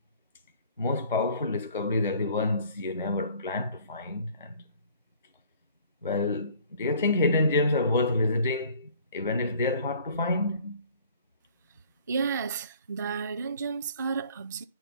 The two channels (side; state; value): both; inverted; correlation -0.53